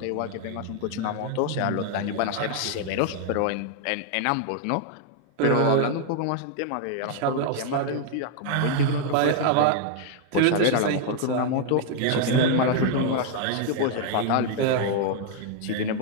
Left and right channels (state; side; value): different; both; correlation 0.00